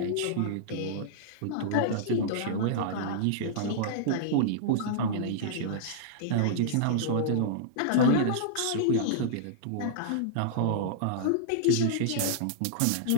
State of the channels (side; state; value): both; different; correlation -0.02